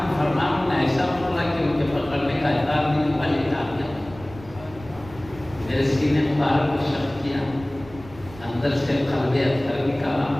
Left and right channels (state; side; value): noise; right; rumble, 18 dB below the sound